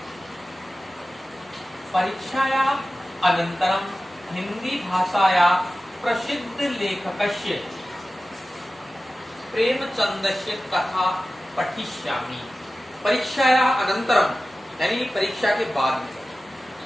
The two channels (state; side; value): normal; both; correlation 0.95